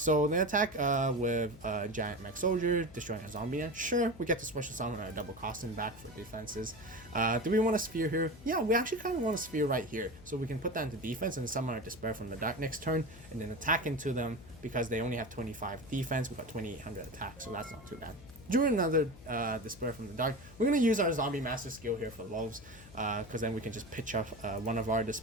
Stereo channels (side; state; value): left; noise; hum, 19 dB below the sound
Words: they attack with Giant Mech Soldier, destroying a zombie. Sure, we get to special summon our double costing back for defenses. Do we want a sphere here? Yeah, we actually kind of want a sphere right here, so we can put that into defense and summon our Despair from the Dark next turn, and then attack into them because they only have 25 defense. We got 2800 attack, so that's not too bad. drew another Despair from the Dark. We're going to use our Zombie Master skill here for lulz, because then we can just pitch up one of our